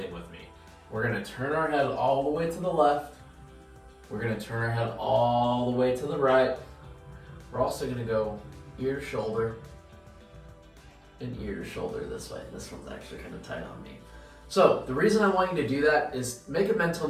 with me. We're going to turn our head all the way to the left. We're going to turn our head all the way to the right. We're also going to go ear to shoulder and ear to shoulder this way. This one's actually kind of tight on me. So the reason I want you to do that is make a mental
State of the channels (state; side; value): identical; both; correlation 1.00